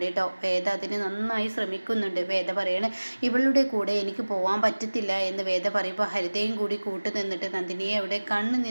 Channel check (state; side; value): inverted; both; correlation -1.00